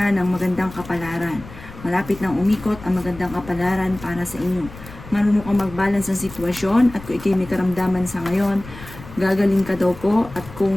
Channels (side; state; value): left; noise; rumble, 16 dB below the sound